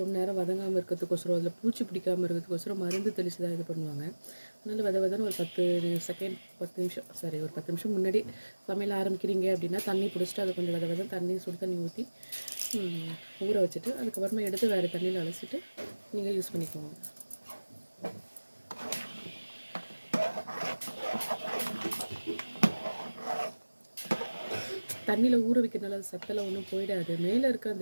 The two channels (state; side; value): inverted; both; correlation -1.00